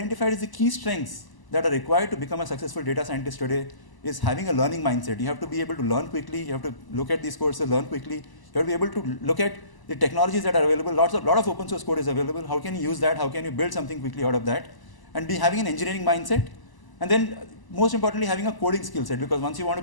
is the key strengths that are required to become a successful data scientist today is having a learning mindset. You have to be able to learn quickly. You have to look at these courses, learn quickly. You have to be able to look at the technologies that are available. A lot of open source code is available. How can you use that? How can you build something quickly out of that? And be having an engineering mindset. And then most importantly, having a coding skill set, because once you want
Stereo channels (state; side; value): late; right; 1.0 ms